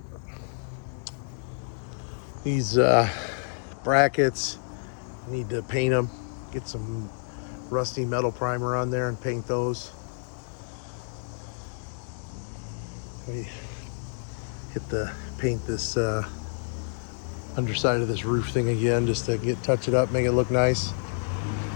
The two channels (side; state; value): right; silent; digital silence